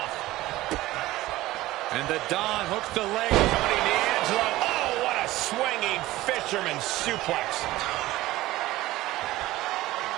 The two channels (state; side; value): quieter; left; 17.1 dB